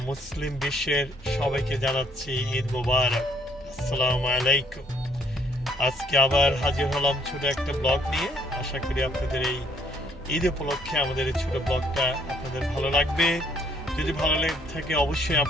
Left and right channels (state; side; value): normal; both; correlation 0.65